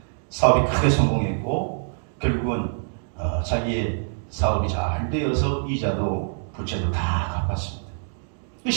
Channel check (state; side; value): silent; left; digital silence